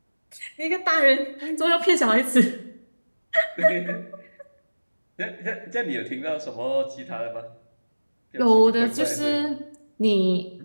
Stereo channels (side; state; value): both; inverted; correlation -1.00